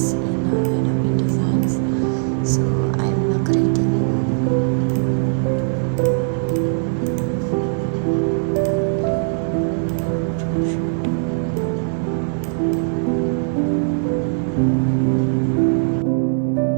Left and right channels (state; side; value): silent; left; 57 dB below the other